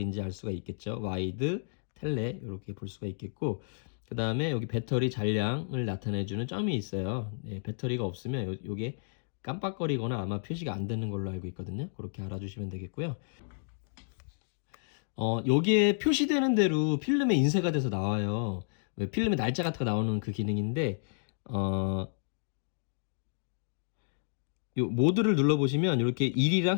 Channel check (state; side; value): silent; right; digital silence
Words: 알 수가 있겠죠. 와이드, 텔레 이렇게 볼 수가 있겠고 그 다음에 여기 배터리 잔량을 나타내주는 점이 있어요. 네, 배터리가 없으면 요게 깜빡거리거나 아마 표시가 안 되는 걸로 알고 있거든요. 그렇게 알아주시면 되겠고요. 여기에 표시되는 대로 필름에 인쇄가 돼서 나와요. 왜 필름에 날짜 같은 거 나오는 그 기능인데, 요 모드를 눌러보시면 이렇게 일이랑